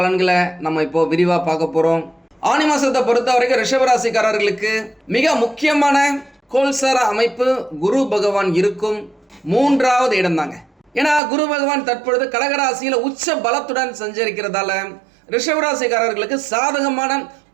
நம்ம இப்போ விரிவாக பார்க்க போகிறோம். ஆனி மாதத்தை பொறுத்த வரைக்கும் ரிஷபராசிக்காரர்களுக்கு மிக முக்கியமான கோல்சார அமைப்பு குரு பகவான் இருக்கும் 3வது இடம் தாங்க. ஏன்னா குரு பகவான் தற்பொழுது கடகராசியில் உச்ச பலத்துடன் சஞ்சரிக்கிறதால ரிஷபராசிக்காரர்களுக்கு சாதகமான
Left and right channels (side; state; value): left; drops out; at 11.2 s